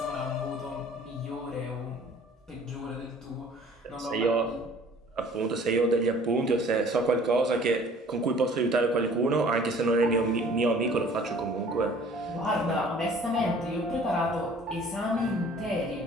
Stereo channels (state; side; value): normal; both; correlation 0.51